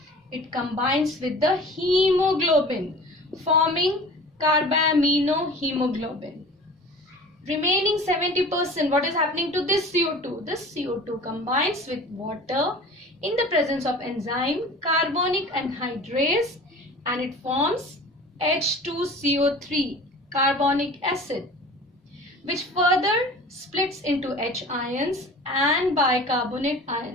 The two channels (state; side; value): normal; both; correlation 0.41